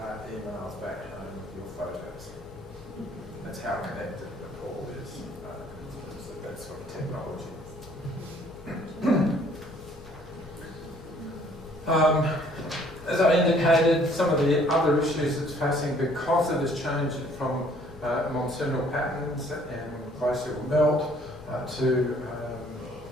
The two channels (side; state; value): both; normal; correlation 0.59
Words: emails back home with your photos. That's how connected Nepal is in terms of that sort of technology. As I indicated, some of the other issues it's facing because of this change from monsoonal patterns and glacial melt to